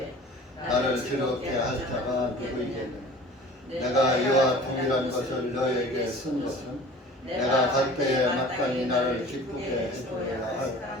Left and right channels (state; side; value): normal; both; correlation 0.44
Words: 나를 즐겁게 할 자가 누구이겠느냐. 내가 이와 동일한 것을 너에게 쓴 것은 내가 갈 때에 마땅히 나를 기쁘게 해주어야 할